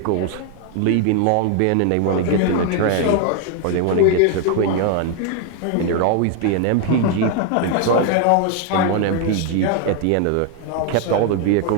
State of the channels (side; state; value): both; different; correlation 0.01